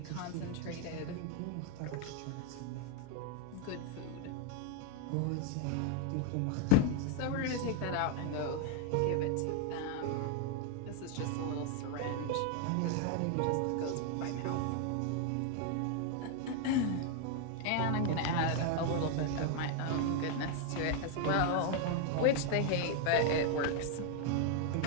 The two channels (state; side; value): different; both; correlation 0.00